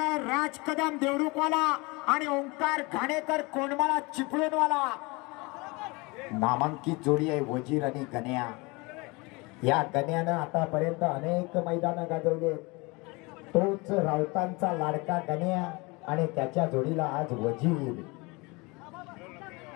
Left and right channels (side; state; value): right; quieter; 26.1 dB